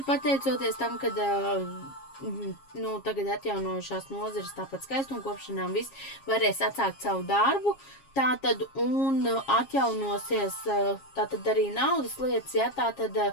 pateicoties tam, kad tagad atjaunojušās nozares, tāpat skaistumkopšanām viss varēs atsākt savu darbu. Tātad, un atjaunosies, tātad arī naudas lietas, ja, tātad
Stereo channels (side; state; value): right; late; 7.4 ms